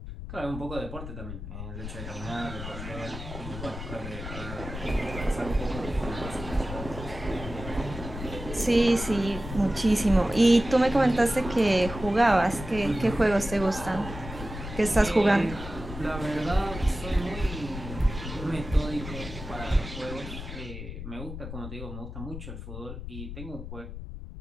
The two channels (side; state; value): left; noise; rumble, 9 dB below the sound